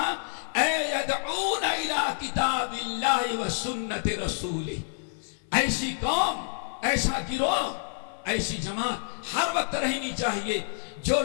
اے یدعون الی کتاب اللہ و سنت رسولہ، ایسی قوم، ایسا گروہ، ایسی جماعت ہر وقت رہنی چاہیے جو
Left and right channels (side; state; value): right; silent; 59 dB below the other